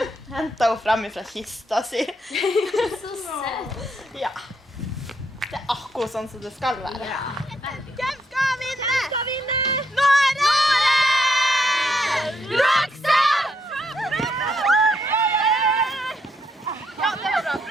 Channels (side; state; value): both; normal; correlation 0.76